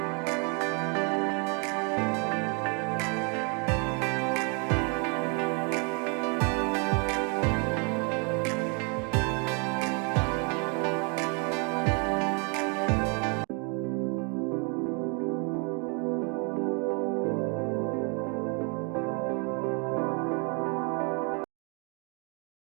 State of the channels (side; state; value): left; quieter; 35.5 dB